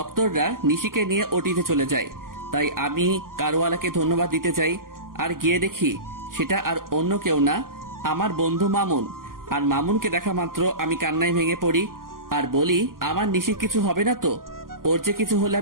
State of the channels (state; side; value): late; left; 0.91 ms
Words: নিশিকে নিয়ে ওটিতে চলে যায়। তাই আমি কারওয়ালাকে ধন্যবাদ দিতে চাই, আর গিয়ে দেখি সেটা আর অন্য কেউ না, আমার বন্ধু মামুন। আর মামুনকে দেখা মাত্র আমি কান্নায় ভেঙে পড়ি আর বলি, আমার নিশির কিছু হবে না তো? ওর যে কিছু হলে